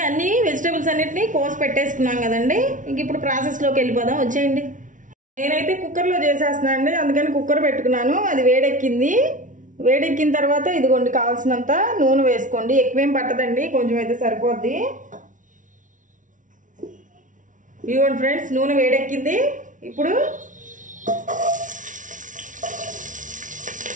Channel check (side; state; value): left; late; 0.37 ms